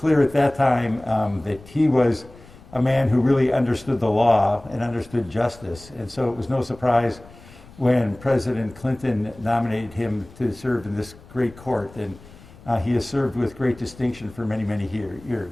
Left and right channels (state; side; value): noise; left; rumble, 21 dB below the sound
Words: at that time that he was a man who really understood the law and understood justice. And so it was no surprise when President Clinton nominated him to serve in this great court. And he has served with great distinction for many, many